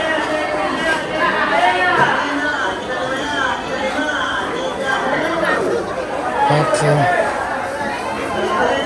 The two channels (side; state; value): both; identical; correlation 1.00